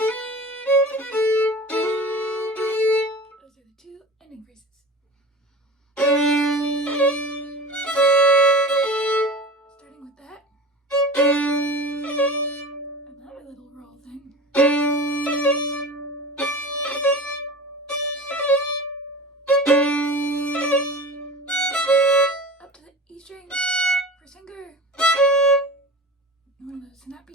Those are the two ending phrases. Starting with that. Another little roll thing. Up to the E string for finger. One of those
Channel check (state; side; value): normal; both; correlation 0.33